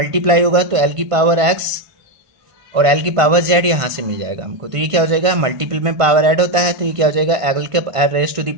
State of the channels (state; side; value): late; left; 1.5 ms